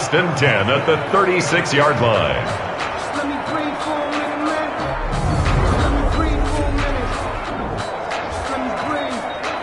and 10 at the 36-yard line.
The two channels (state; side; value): identical; both; correlation 1.00